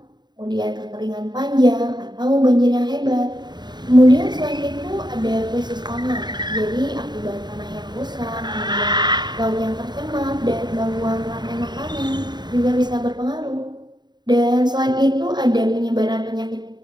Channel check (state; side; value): late; left; 0.21 ms